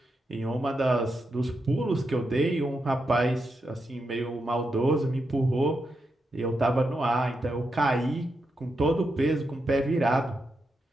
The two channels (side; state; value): both; normal; correlation 0.85